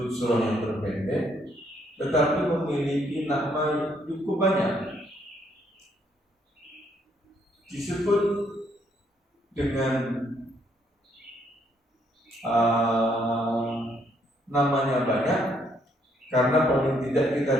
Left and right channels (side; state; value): both; normal; correlation 0.71